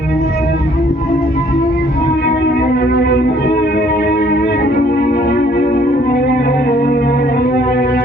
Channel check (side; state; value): both; normal; correlation 0.62